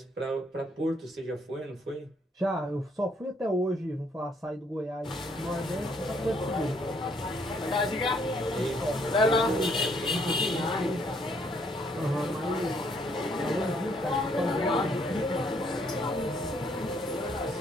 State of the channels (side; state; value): both; normal; correlation 0.69